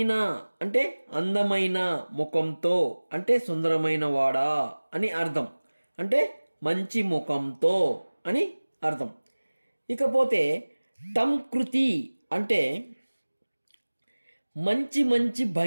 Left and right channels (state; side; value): inverted; both; correlation -1.00